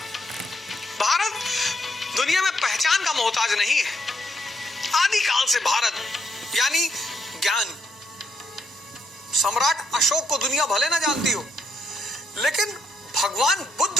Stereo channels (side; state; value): both; normal; correlation 0.76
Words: भारत दुनिया में पहचान का मोहताज नहीं है। आदिकाल से भारत यानी ज्ञान। सम्राट अशोक को दुनिया भले ना जानती हो, लेकिन भगवान बुद्ध